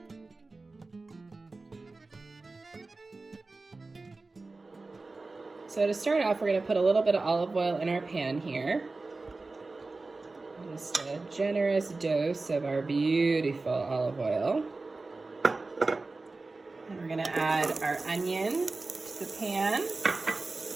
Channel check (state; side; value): quieter; left; 3.5 dB